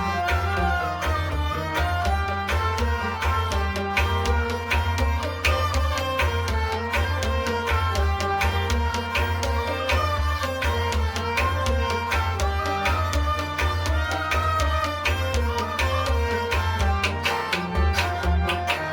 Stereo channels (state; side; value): identical; both; correlation 1.00